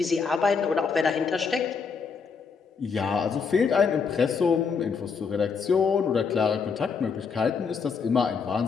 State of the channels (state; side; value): quieter; right; 5.6 dB